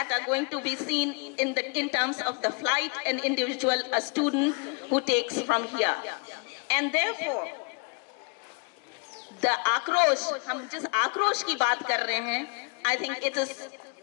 are going to be seen in terms of the flight and individual student who takes from here. And therefore, the Aakrosh, हम जिस आक्रोश की बात कर रहे हैं, I think it is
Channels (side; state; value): right; quieter; 35.6 dB